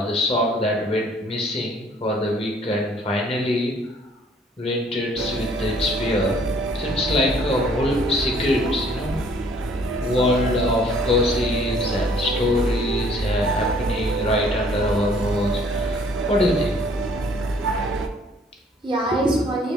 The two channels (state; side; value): normal; both; correlation 0.59